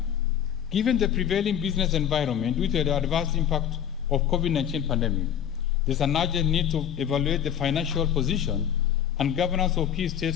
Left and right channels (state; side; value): quieter; right; 9.5 dB